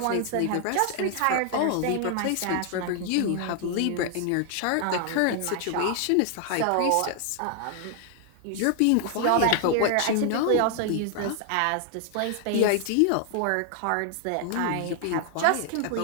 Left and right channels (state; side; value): different; both; correlation 0.00